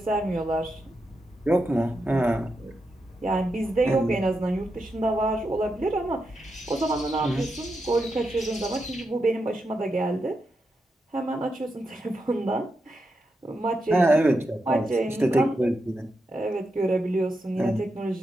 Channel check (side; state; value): both; normal; correlation 0.86